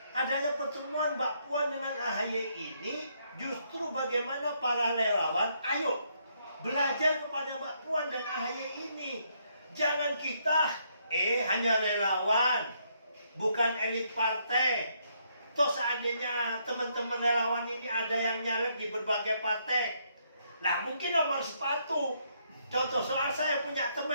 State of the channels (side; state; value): both; inverted; correlation -0.73